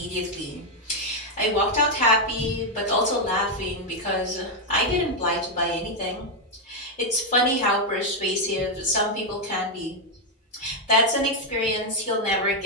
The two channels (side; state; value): both; normal; correlation 0.01